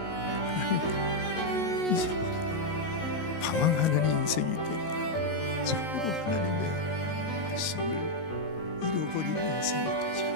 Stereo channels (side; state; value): right; late; 19 ms